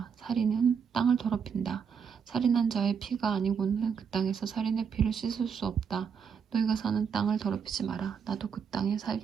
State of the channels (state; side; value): quieter; left; 6.8 dB